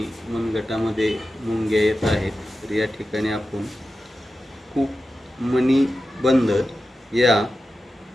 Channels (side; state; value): both; normal; correlation 0.92